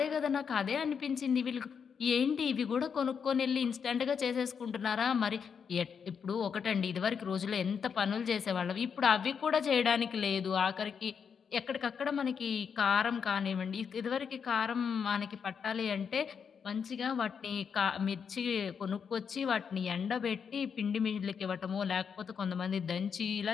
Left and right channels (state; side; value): quieter; right; 6.7 dB